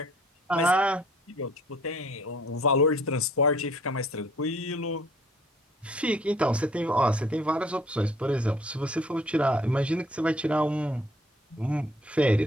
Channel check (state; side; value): normal; both; correlation 0.57